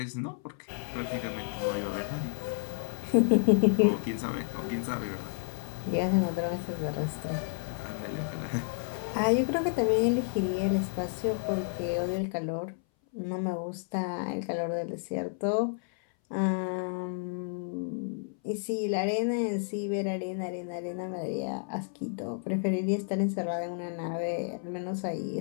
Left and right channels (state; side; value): silent; right; 57 dB below the other